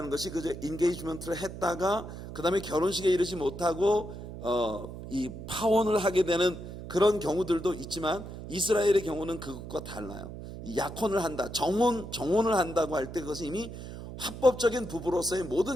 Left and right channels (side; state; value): right; noise; hum, 11 dB below the sound